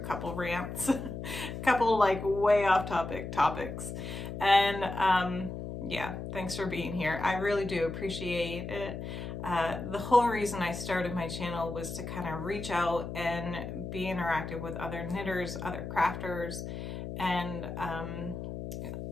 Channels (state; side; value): noise; left; hum, 7 dB below the sound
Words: couple rants, a couple like way off topics. And yeah, thanks for being here. I really do appreciate it. The whole reason I started my channel was to kind of reach out and be interactive with other knitters, other crafters, and I'm